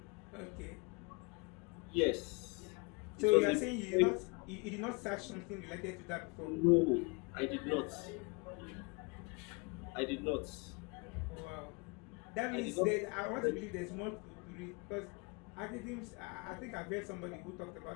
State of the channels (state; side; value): quieter; right; 30.1 dB